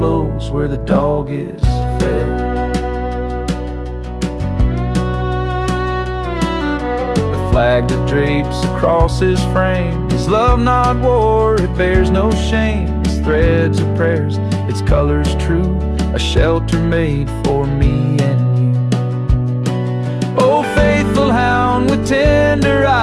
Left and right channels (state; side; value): identical; both; correlation 1.00